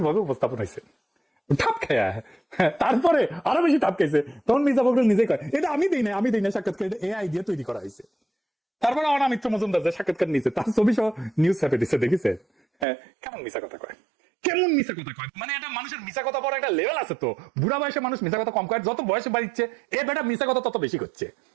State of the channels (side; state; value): left; drops out; at 12.9 s